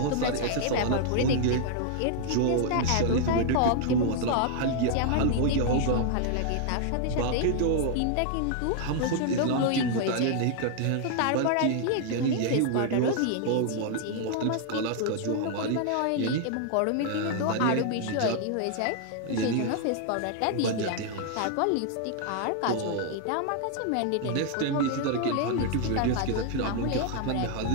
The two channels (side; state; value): both; different; correlation 0.00